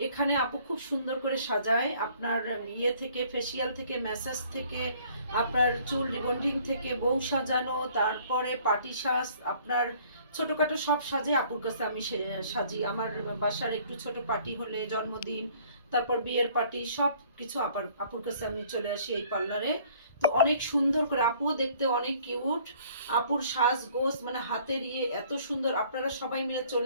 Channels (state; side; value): inverted; both; correlation -0.57